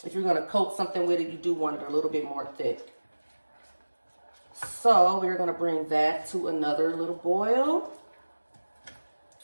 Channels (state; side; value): inverted; both; correlation -1.00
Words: if you're gonna coat something with it, you do want it a little bit more thick. So we're gonna bring that to another little boil,